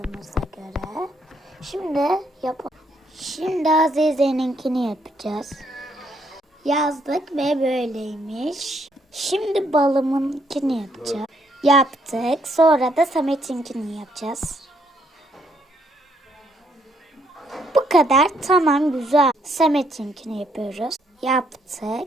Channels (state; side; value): normal; both; correlation 0.71